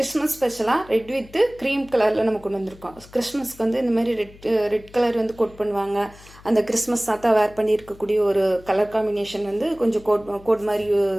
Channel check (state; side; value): noise; left; hum, 22 dB below the sound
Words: ஸ்பெஷலா ரெட் வித் cream கலர்ல நம்ம கொண்டு வந்திருக்கோம். கிறிஸ்மஸ்க்கு வந்து இந்த மாதிரி ரெட் கலர் வந்து கோட் பண்ணுவாங்க. அந்த கிறிஸ்மஸ் தாத்தா வேர் பண்ணி இருக்கக்கூடிய ஒரு கலர் காம்பினேஷன் வந்து கொஞ்சம் கோட் மாதிரி